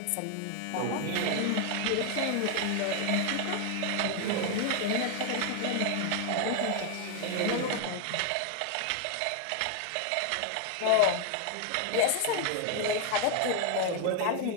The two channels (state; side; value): different; both; correlation 0.00